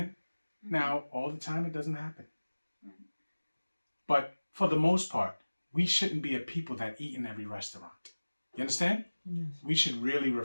Now, all the time it doesn't happen. But for the most part, we shouldn't be a people that eat in every restaurant. You understand? Yes. We should really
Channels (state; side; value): inverted; both; correlation -1.00